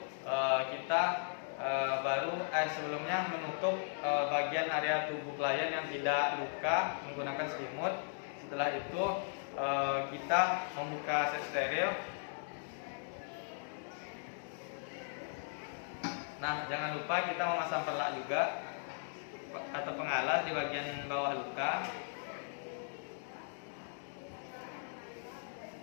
kita sebelumnya menutup bagian area tubuh klien yang tidak luka menggunakan selimut. Setelah itu, kita membuka set steril. Nah, jangan lupa kita memasang perlak juga atau pengalas di bagian bawah luka.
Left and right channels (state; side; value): silent; right; digital silence